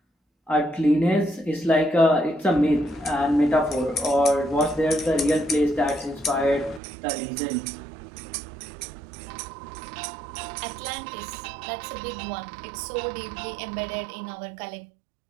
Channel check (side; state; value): left; drops out; at 6.8 s